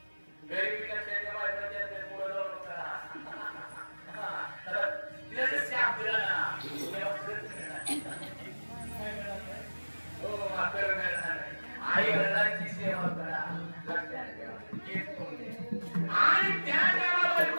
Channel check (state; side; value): inverted; both; correlation -1.00